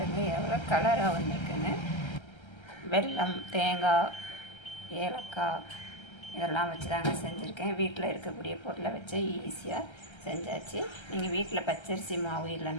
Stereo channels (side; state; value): right; late; 1.3 ms